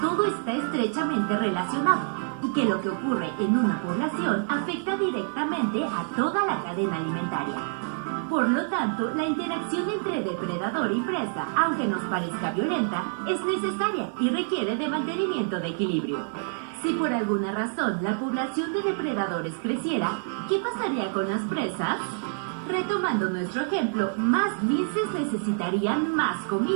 está estrechamente relacionado y que lo que ocurre en una población afecta directamente a toda la cadena alimentaria. Por lo tanto, la interacción entre depredador y presa, aunque nos parezca violenta, es necesaria y requiere de mantenimiento de equilibrio. Si por alguna razón la población de depredadores creciera, ¿qué pasaría con las presas? Retomando nuestro ejemplo, más linces necesitarían más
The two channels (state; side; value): silent; left; 60 dB below the other